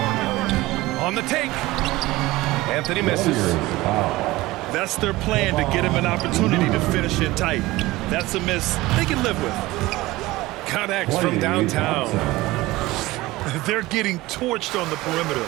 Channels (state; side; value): quieter; left; 19.1 dB